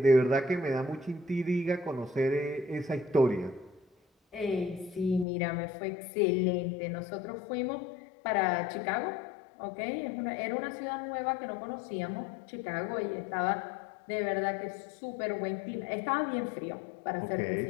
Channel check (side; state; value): right; drops out; at 5.2 s